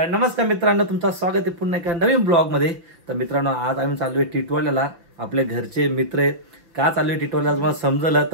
नमस्कार मित्रांनो, तुमचं स्वागत आहे पुन्हा एका नवीन ब्लॉग मध्ये. तर मित्रांनो, आज आम्ही चालू आहे टिटवाल्याला. आपले घरचे मित्र आहेत. का चालू आहे टिटवाल्याला तुम्हाला समजलं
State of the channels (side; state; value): left; late; 5.9 ms